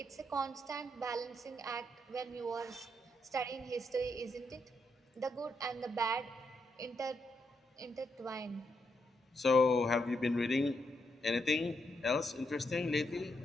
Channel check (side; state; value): both; normal; correlation 0.80